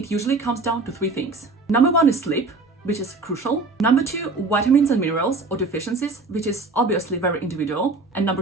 usually comes down to three things. Number one is sleep, which is crucial. Number two, vitamins and minerals or deficiencies, which is obviously very individual. And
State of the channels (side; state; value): left; quieter; 3.6 dB